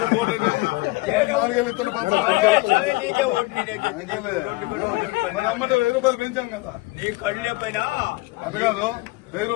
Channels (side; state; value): right; quieter; 22.2 dB